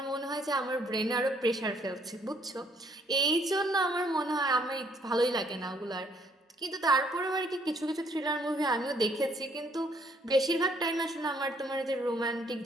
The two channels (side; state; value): both; normal; correlation 0.66